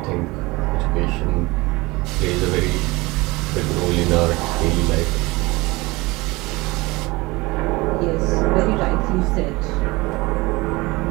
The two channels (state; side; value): quieter; left; 22.6 dB